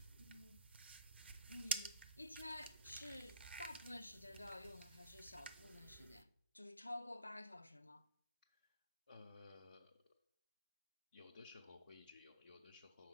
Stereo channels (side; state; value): both; inverted; correlation -0.51